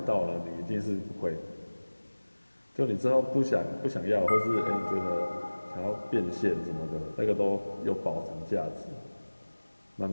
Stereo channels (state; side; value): inverted; both; correlation -1.00